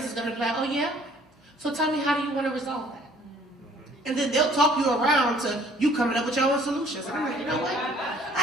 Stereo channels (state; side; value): normal; both; correlation 0.56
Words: is going to be like, oh yeah? So tell me, how do you want to resolve that? And then they'll talk you around to you coming up with your own solutions. And I'm like, you know what?